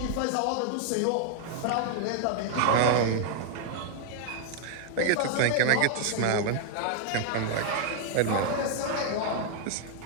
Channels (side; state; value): both; different; correlation 0.00